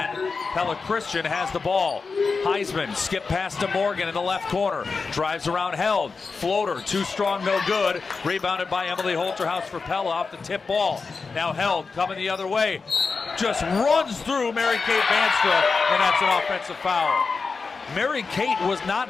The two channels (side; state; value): right; quieter; 4.6 dB